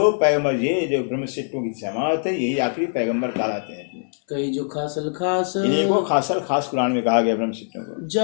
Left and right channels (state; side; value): silent; right; 59 dB below the other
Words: पैगंबर, ये जो ब्रह्मशिष्टों की जमात है, यही आखिरी पैगंबर कहलाते हैं। कई जो खासल खास। इन्हीं को खासल खास कुरान में कहा गया ब्रह्मशिष्टों को।